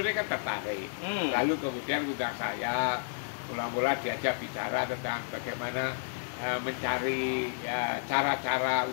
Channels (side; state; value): right; silent; 57 dB below the other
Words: tertarik. Lalu kemudian undang saya, mula-mula diajak bicara tentang bagaimana mencari cara-cara